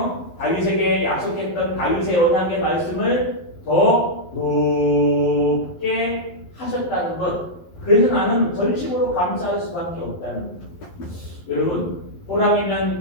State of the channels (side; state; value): right; late; 11 ms